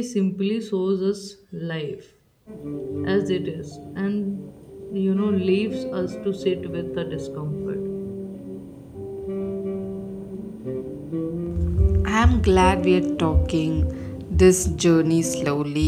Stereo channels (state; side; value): identical; both; correlation 1.00